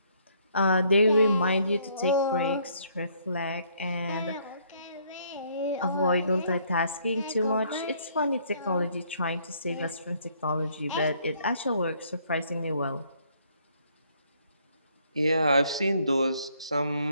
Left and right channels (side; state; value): both; inverted; correlation -0.66